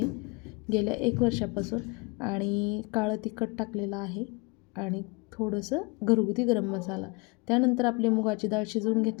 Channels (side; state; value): right; quieter; 28.1 dB